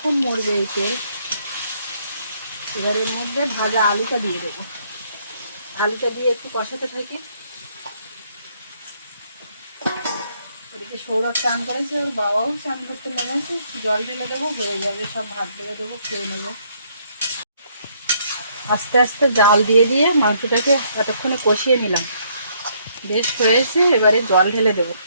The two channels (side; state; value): both; inverted; correlation -0.68